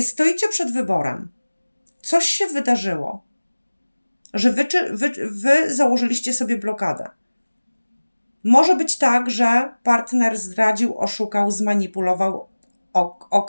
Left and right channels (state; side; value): inverted; both; correlation -1.00